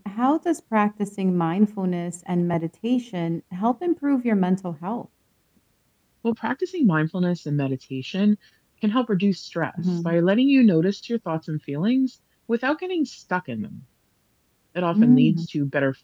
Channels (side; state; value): both; identical; correlation 1.00